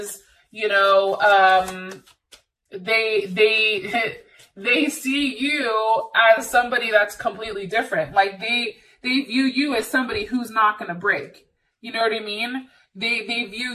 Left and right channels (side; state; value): both; identical; correlation 1.00